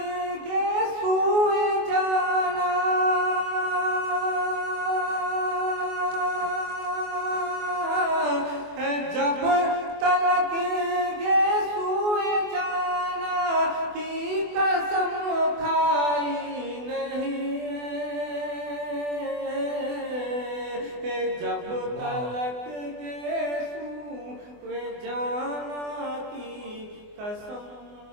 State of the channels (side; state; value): left; late; 24 ms